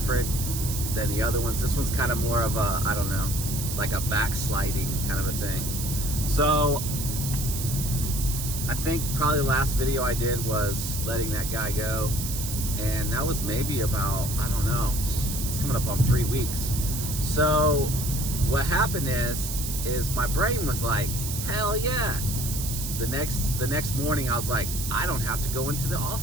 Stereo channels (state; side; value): noise; right; hiss, 5 dB below the sound